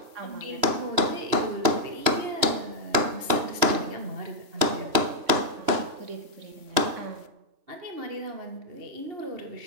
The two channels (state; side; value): late; left; 3.0 ms